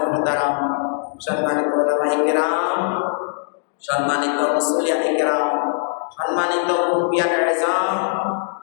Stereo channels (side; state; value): right; silent; digital silence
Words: محترم সম্মানিত উলামায়ে কিরাম সম্মানিত মুসল্লিয়ানে কিরাম সম্মানিত মুরব্বিয়ানে ইজাম